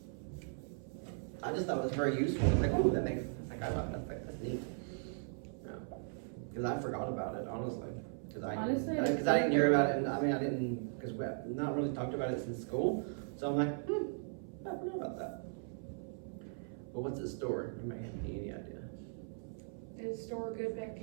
I just thought it was very useful. It's like, oh, that makes, like, I love that. That's neat. Because I forgot about it, honestly. Honestly, Because I didn't hear about it, and I mean, I didn't, because we have not really talked about it since school. So I'm like, I forgot about that. But what's it store? You may have any idea. It store good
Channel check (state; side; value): silent; left; 52 dB below the other